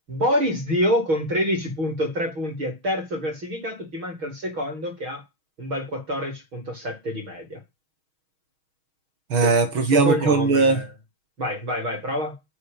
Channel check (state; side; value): late; left; 6.3 ms